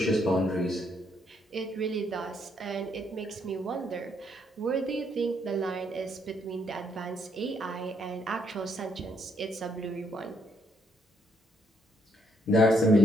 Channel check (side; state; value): both; normal; correlation 0.72